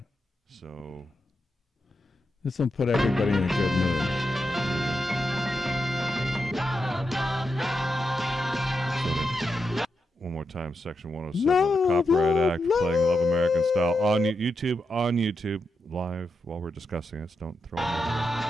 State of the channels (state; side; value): normal; both; correlation 0.86